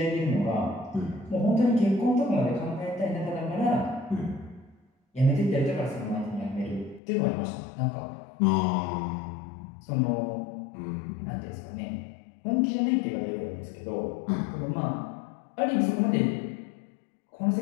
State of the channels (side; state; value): right; drops out; at 7.0 s